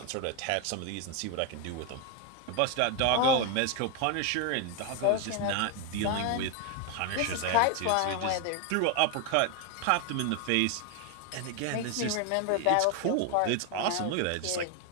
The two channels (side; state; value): both; different; correlation 0.01